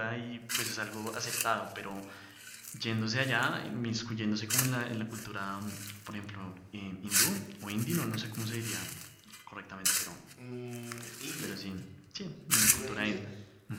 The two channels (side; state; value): both; identical; correlation 1.00